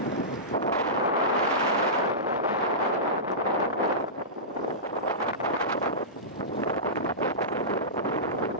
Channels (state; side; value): normal; both; correlation -0.18